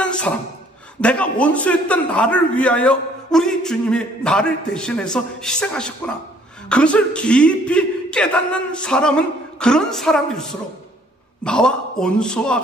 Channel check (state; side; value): normal; both; correlation 0.60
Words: 사람, 내가 원수였던 나를 위하여 우리 주님이 나를 대신해서 희생하셨구나, 그것을 깊이 깨닫는 사람은 그런 사람일수록 나와 원수와